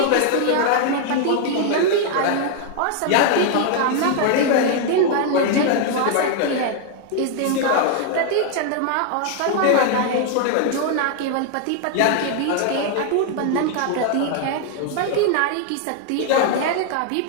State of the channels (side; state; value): both; different; correlation 0.00